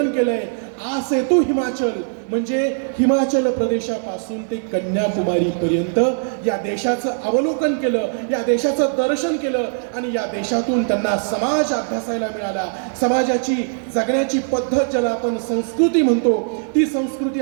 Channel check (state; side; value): silent; left; digital silence